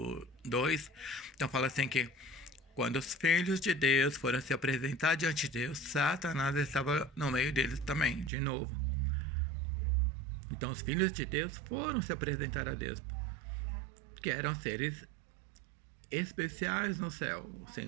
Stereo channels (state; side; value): drops out; left; at 8.3 s